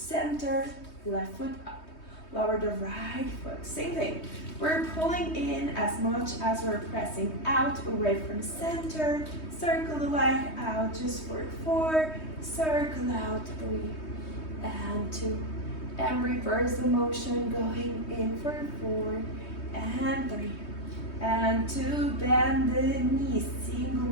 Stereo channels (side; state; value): right; late; 3.2 ms